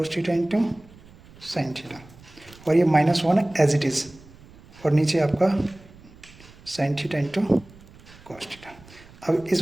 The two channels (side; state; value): right; noise; rumble, 23 dB below the sound